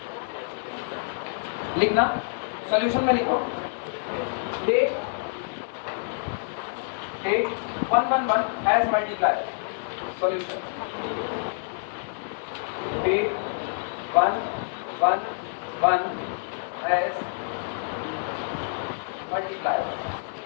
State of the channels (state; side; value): silent; right; digital silence